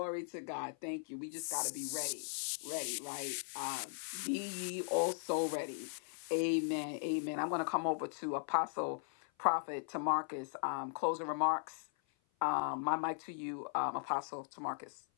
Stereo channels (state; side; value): silent; right; 52 dB below the other